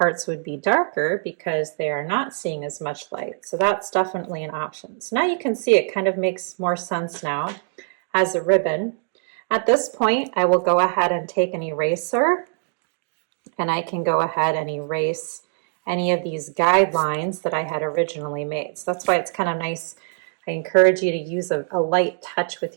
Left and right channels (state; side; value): silent; left; 56 dB below the other